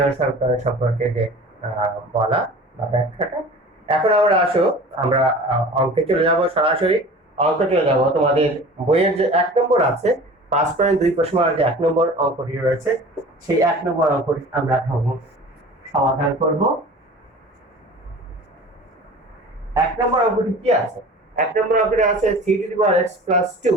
সমীকরণ সম্পর্কে যে বলা বা ব্যাখ্যাটা। এখন আমরা অঙ্কে চলে যাব, সরাসরি অঙ্কে চলে যাব। তোমাদের বইয়ের যে 1 নম্বর আছে 5.2 প্রশ্নের যে 1 নম্বর অঙ্কটি রয়েছে, সেই 1 নম্বর অঙ্কটি আমরা সমাধান করব। 1 নম্বর অঙ্কটি কি আছে? 1 নম্বর অঙ্কটি আছে 3x +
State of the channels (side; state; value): both; normal; correlation 0.41